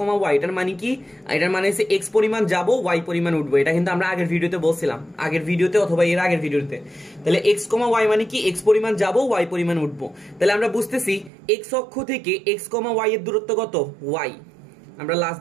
y, এটার মানে কি, এটার মানে হচ্ছে x পরিমাণ যাবো, y পরিমাণ উঠবো। এটা কিন্তু আমরা আগের ভিডিওতে বলছিলাম, আগের ভিডিওতে অথবা এর আগের ভিডিওতে। তাহলে x, y মানে কি, x পরিমাণ যাবো, y পরিমাণ উঠবো। তাহলে আমরা বুঝতেছি x অক্ষ থেকে x, y এর দূরত্ব কত, y। আমরা লাস্ট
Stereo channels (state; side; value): drops out; left; at 11.3 s